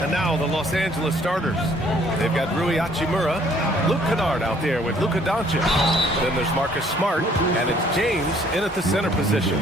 And now the Los Angeles starters. They've got Rui Hachimura, Luke Kennard out there with Luka Doncic. Then there's Marcus Smart, and it's James in at the center position.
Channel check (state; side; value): normal; both; correlation 0.61